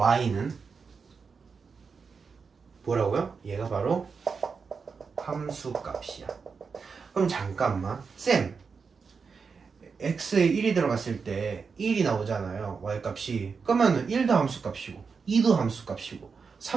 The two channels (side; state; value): left; quieter; 5.3 dB